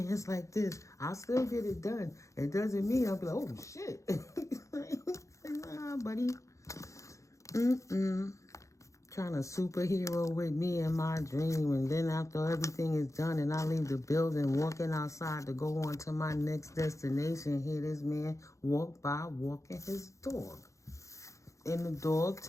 like this. I'll still get it done. It doesn't mean I'll be like, oh, shit. Nah, buddy. Trying to superhero with me in my dream, and then after everything is done and I leave the building, walking outside to go on to my next destination, hear this man walk by walking his dog. And the dog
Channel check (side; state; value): right; late; 0.15 ms